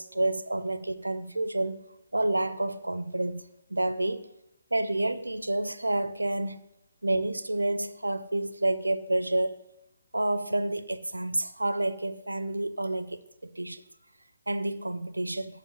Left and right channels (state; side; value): inverted; both; correlation -0.98